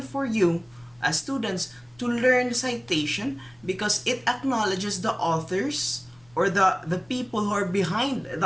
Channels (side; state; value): left; noise; rumble, 30 dB below the sound